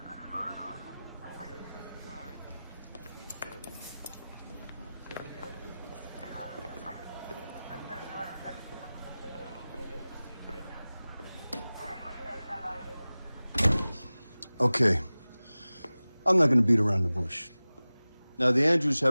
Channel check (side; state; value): both; inverted; correlation -0.98